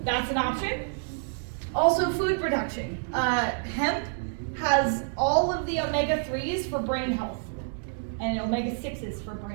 that's an option. Also food production. Hemp has all of the omega-3s for brain health and omega-6s for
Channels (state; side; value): silent; left; digital silence